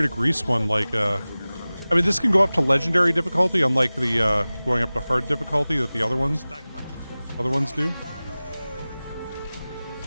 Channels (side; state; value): both; inverted; correlation -0.98